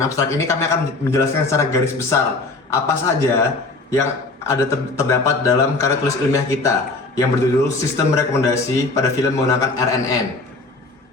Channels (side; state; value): right; quieter; 3.4 dB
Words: abstrak ini kami akan menjelaskan secara garis besar apa saja yang ada terdapat dalam karya tulis ilmiah kita yang berjudul Sistem Rekomendasi pada Film Menggunakan RNN.